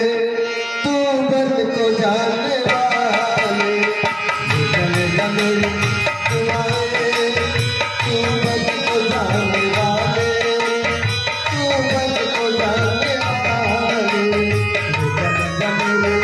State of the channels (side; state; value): both; identical; correlation 1.00